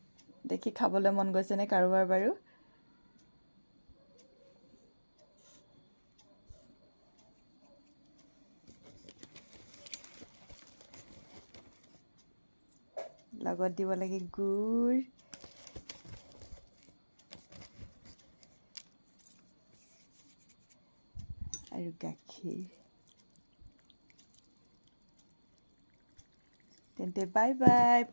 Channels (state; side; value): inverted; both; correlation -1.00